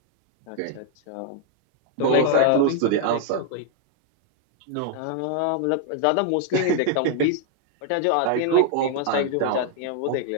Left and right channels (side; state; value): both; different; correlation 0.00